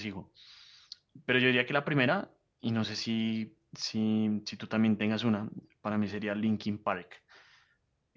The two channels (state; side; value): identical; both; correlation 1.00